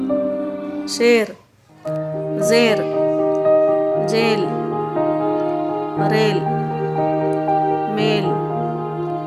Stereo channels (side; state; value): both; identical; correlation 1.00